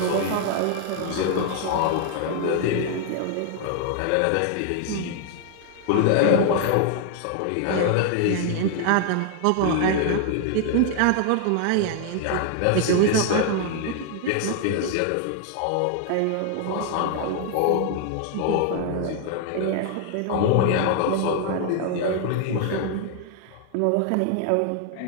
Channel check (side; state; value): both; different; correlation 0.00